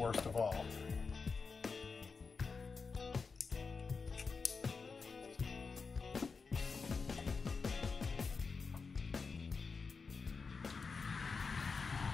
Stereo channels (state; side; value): quieter; right; 4.8 dB